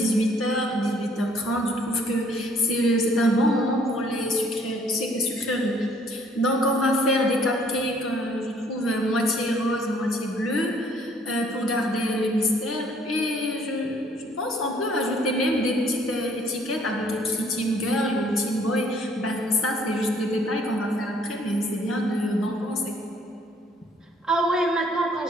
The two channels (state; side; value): normal; both; correlation 0.61